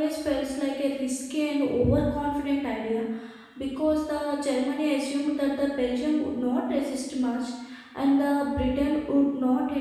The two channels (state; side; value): identical; both; correlation 1.00